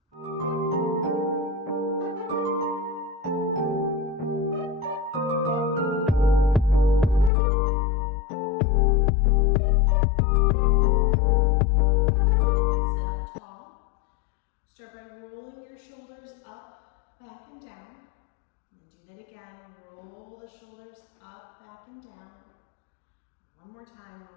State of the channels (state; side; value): drops out; right; at 7.3 s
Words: Start by rolling your shoulders up, back, and down. And then do that again. Roll the shoulders up, back, and down. One more time.